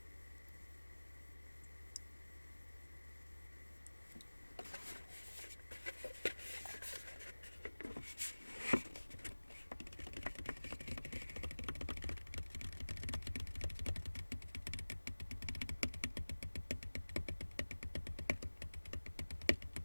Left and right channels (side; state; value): both; inverted; correlation -1.00